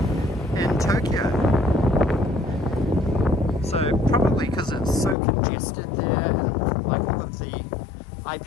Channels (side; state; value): right; drops out; at 5.2 s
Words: in Tokyo. So probably because it's so congested there, and like all of the